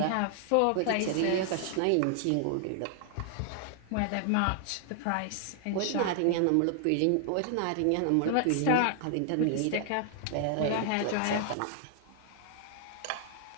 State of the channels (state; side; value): different; both; correlation 0.00